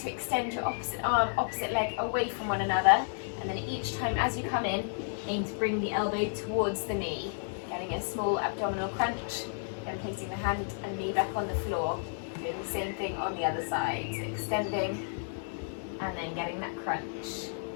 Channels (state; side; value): silent; right; digital silence